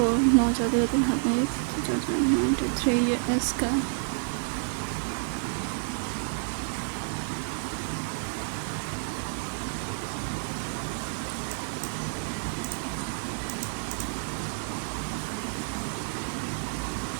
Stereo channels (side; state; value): left; silent; 58 dB below the other